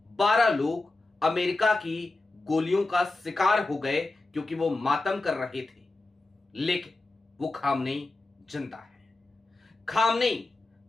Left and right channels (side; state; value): right; quieter; 3.1 dB